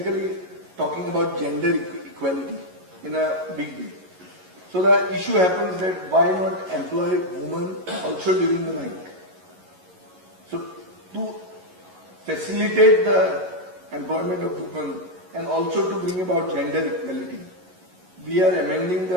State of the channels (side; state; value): left; late; 11 ms